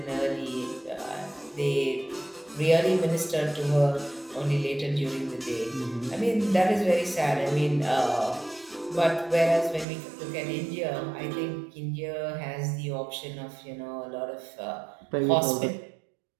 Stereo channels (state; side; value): drops out; left; at 9.9 s